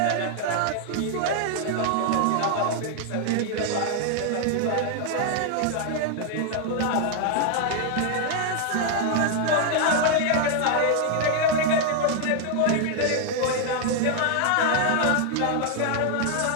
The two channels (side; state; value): both; different; correlation 0.00